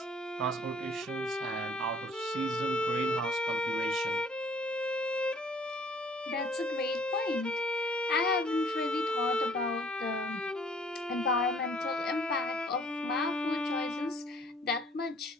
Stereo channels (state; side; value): normal; both; correlation 0.57